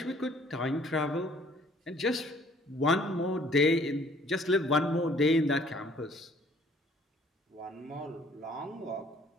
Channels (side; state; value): both; normal; correlation 0.58